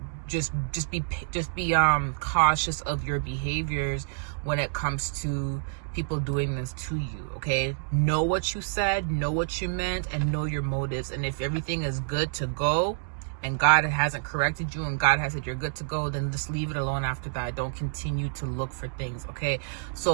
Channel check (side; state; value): left; silent; digital silence